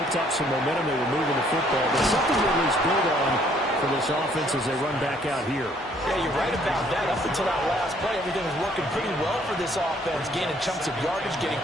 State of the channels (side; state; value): both; normal; correlation 0.63